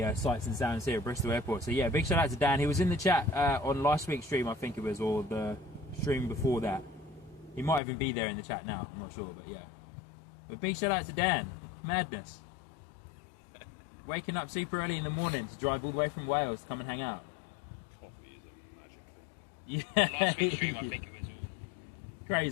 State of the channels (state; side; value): drops out; right; at 7.8 s